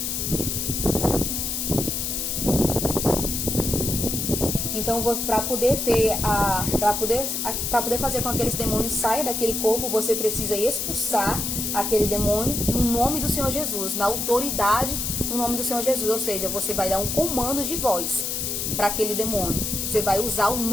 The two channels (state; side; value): noise; left; hiss, 2 dB below the sound